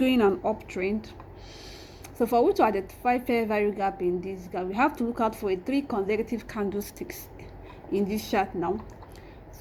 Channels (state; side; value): identical; both; correlation 1.00